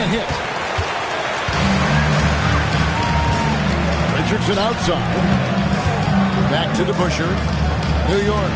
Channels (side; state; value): both; identical; correlation 1.00